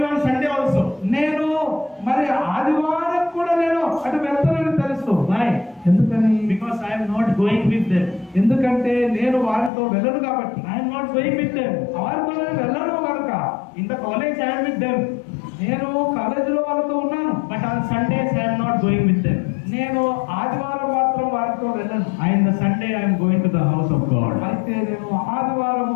on Sunday also. నేను మరి ఆదివారం కూడా నేను అటు వెళ్తానని తెలుసు. Why? ఎందుకని? Because I am not going with them. ఎందుకంటే నేను వారితో వెళ్ళను కాబట్టి. I am not going with them. వారితో నేను వెళ్ళను కనుక. In the college I am with them. నేను కాలేజీలో వాళ్ళతో ఉన్నాను. But on Sundays I am not going with them. నేను ఆదివారం మాత్రం వారితో వెళ్ళను. In the Sunday I am going to the house of God. అయితే నేను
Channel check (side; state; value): right; drops out; at 9.7 s